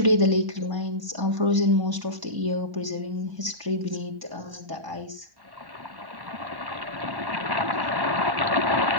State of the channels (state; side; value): late; left; 1.0 ms